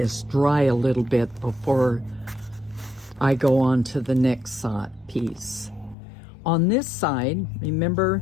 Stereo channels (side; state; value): right; drops out; at 6.0 s